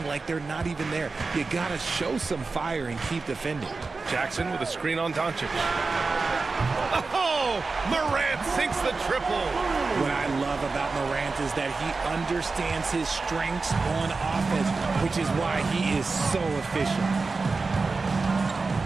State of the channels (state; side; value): quieter; left; 4.0 dB